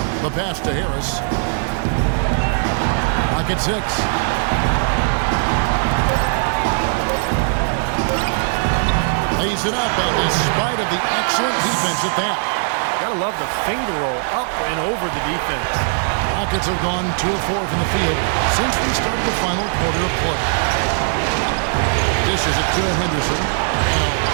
The pass to Harris. Pocket 6. Lays it up, and in spite of the excellent defense at that. Gotta love the finger roll up and over the defense. Rockets have gone 2 of 4 from the field since we started the final quarter of play. Dishes it to Henderson. And a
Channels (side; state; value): left; silent; 63 dB below the other